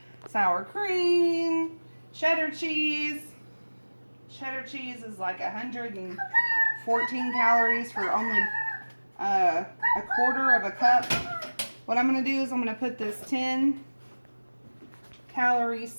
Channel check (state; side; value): inverted; both; correlation -1.00